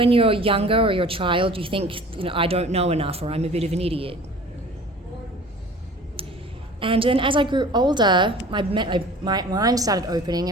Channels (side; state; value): both; normal; correlation 0.44